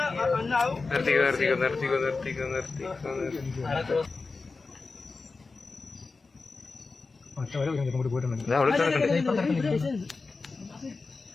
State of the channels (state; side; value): quieter; right; 4.1 dB